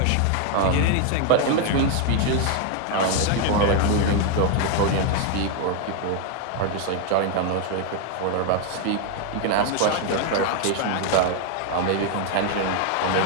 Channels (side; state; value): both; different; correlation 0.00